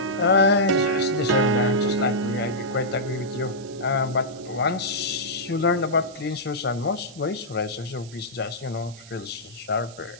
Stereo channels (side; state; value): right; noise; hiss, 20 dB below the sound